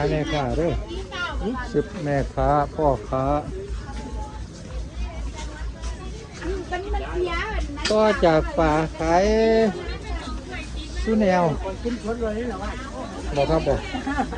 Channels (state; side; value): identical; both; correlation 1.00